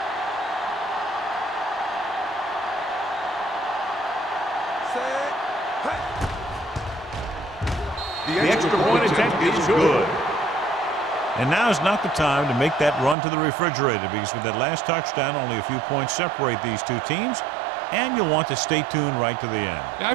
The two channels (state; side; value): drops out; left; at 13.2 s